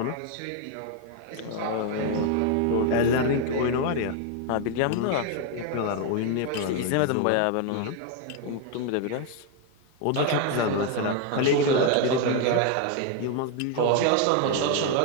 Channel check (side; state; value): both; different; correlation 0.01